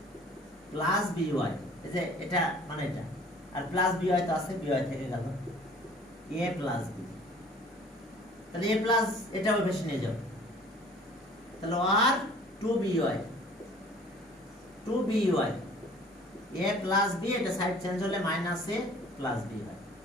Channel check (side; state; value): both; normal; correlation 0.51